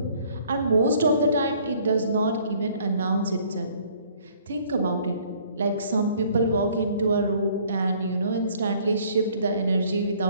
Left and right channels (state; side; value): inverted; both; correlation -0.59